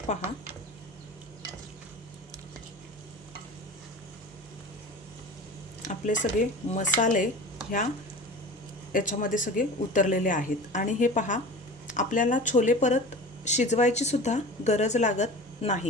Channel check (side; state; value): both; normal; correlation 0.36